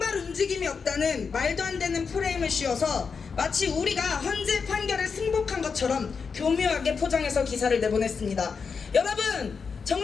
움직임이 없다는 말도 안 되는 프레임을 씌워서 마치 우리가 헌재 판결에 승복한 것처럼 교묘하게 포장해서 기사를 내보냈습니다. 여러분,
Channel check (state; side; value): quieter; right; 5.5 dB